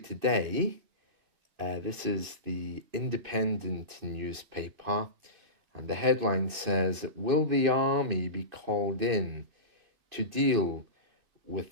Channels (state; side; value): late; left; 2.6 ms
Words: This is the Independent newspaper, and the headline says, "Will the army be called in to deal with